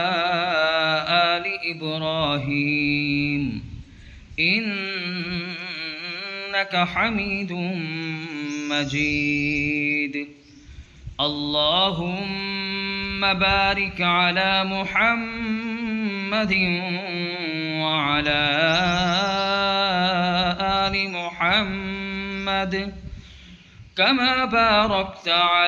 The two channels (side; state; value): both; identical; correlation 1.00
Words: آل إبراهيم إنك حميد مجيد. اللهم بارك على محمد وعلى آل محمد كما باركت